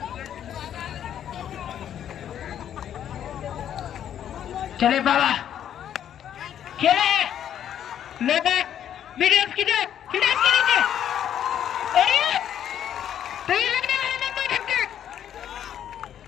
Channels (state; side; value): quieter; right; 10.0 dB